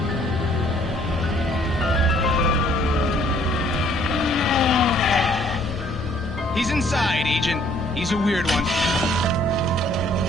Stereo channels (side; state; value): both; normal; correlation 0.61